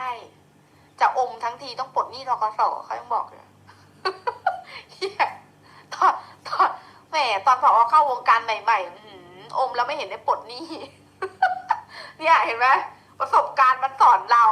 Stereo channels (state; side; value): identical; both; correlation 1.00